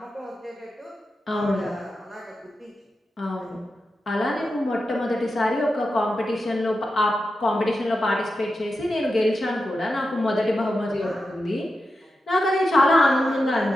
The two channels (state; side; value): normal; both; correlation 0.90